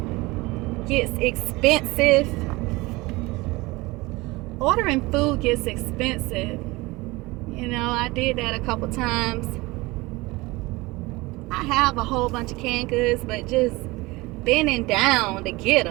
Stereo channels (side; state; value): left; quieter; 22.1 dB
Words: gets expensive. Ordering food gets expensive. You know, I did that a couple times. I have a whole bunch of canned goods, but just bending down to get